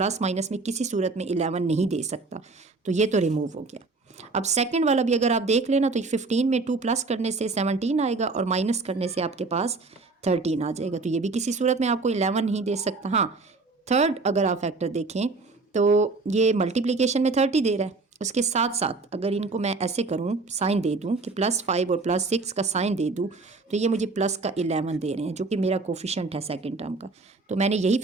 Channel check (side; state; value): left; quieter; 3.8 dB